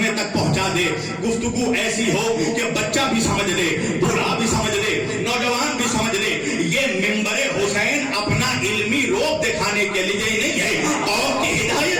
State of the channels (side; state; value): both; identical; correlation 1.00